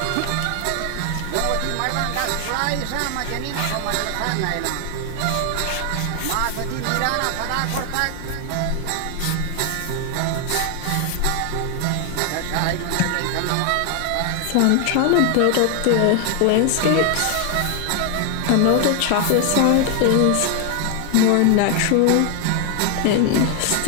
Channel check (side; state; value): both; different; correlation 0.00